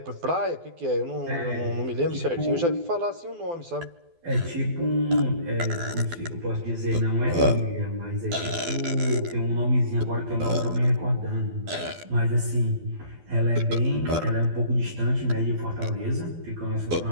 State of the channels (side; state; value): left; late; 12 ms